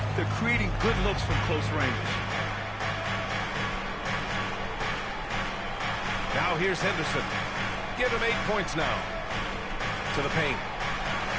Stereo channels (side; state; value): both; identical; correlation 1.00